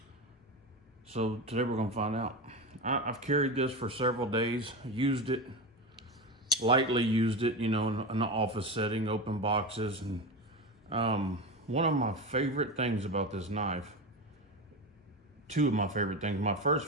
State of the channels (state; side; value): normal; both; correlation 0.21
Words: so today we're going to find out. I've carried this for several days, used it, lightly used it, in an office setting, open boxes. And one of my favorite things about this knife, two of my favorite things. My first